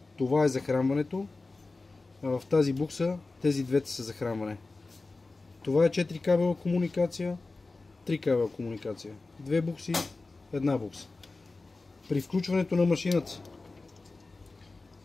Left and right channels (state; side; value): quieter; right; 3.5 dB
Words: това е захранването, а в тази букса тези двете са захранване. Това е 4 кабела комуникация, 3 кабела комуникация. 2 букси, една букса. При включването на машината